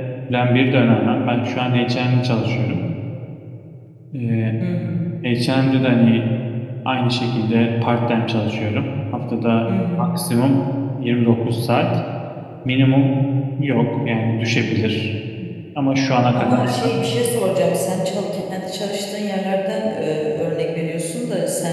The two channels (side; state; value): both; identical; correlation 1.00